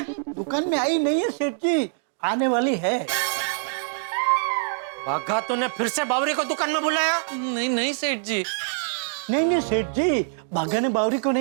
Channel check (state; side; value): silent; left; digital silence